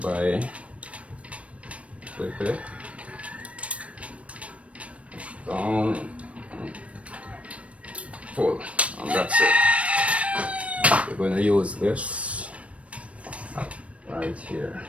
by click it down, pull, and that's it. We're going to use this right here.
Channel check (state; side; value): late; left; 0.063 ms